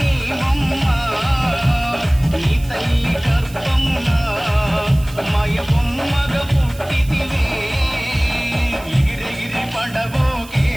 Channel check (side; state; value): right; noise; hiss, 20 dB below the sound